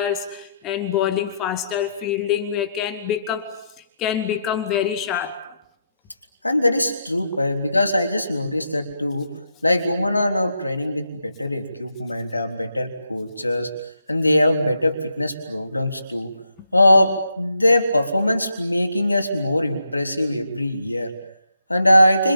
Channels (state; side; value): inverted; both; correlation -0.79